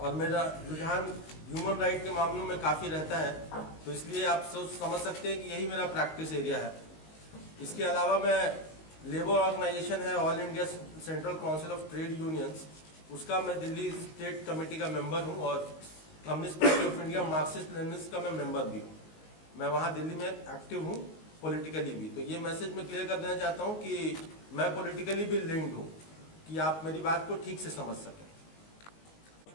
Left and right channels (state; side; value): late; right; 19 ms